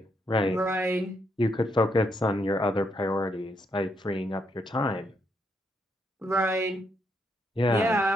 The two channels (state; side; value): normal; both; correlation 0.77